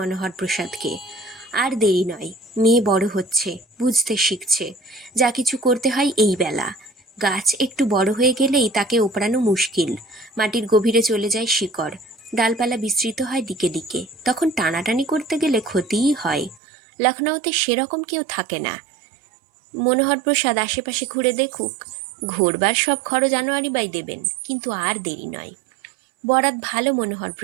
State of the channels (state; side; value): drops out; left; at 16.6 s